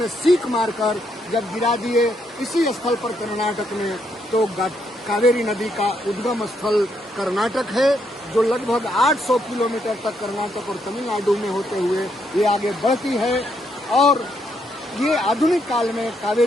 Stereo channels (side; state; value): both; normal; correlation 0.76